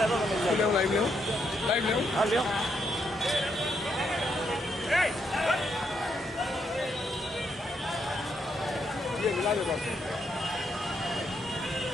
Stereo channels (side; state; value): both; normal; correlation 0.77